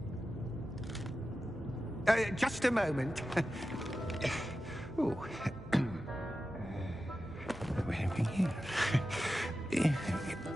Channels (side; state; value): both; normal; correlation 0.92